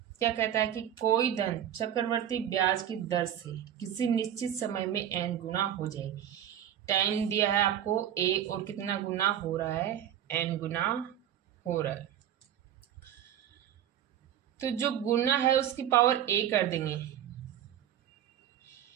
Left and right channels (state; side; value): quieter; left; 10.3 dB